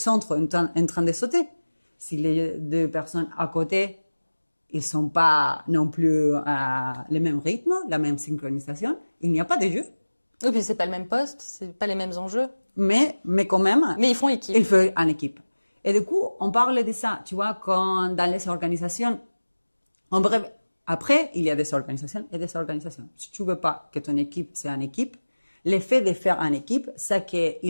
en train de sauter. Si les deux personnes à côté, ils sont pas non plus à le même rythme, la même synchronisation, il n'y a pas de jeu. Oui, puis c'est pas le même poste, c'est pas les mêmes enjeux. Mais quand même. Mais ils font équipe. Ils font en équipe. Et du coup, on parle de ça, tu vois, quand dans les organisations, en bref, après, il y a des organisations et des organisations. Si tu veux pas que ton équipe soit une équipe, l'effet de faire une équipe, c'est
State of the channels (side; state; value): both; inverted; correlation -1.00